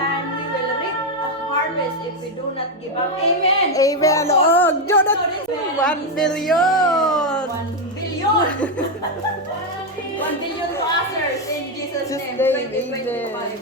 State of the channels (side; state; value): both; normal; correlation 0.05